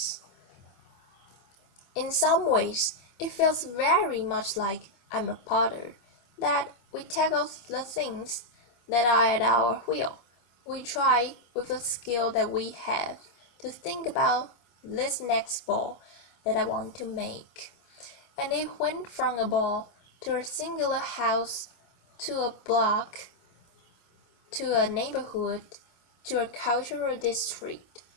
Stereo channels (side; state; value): right; late; 25 ms